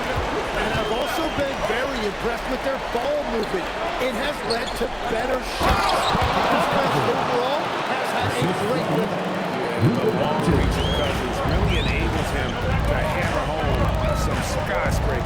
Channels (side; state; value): both; identical; correlation 1.00